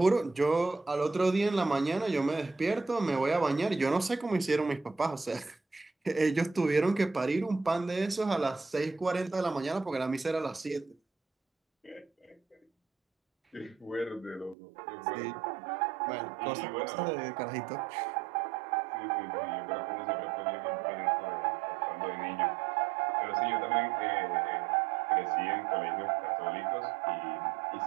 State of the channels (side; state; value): left; drops out; at 14.6 s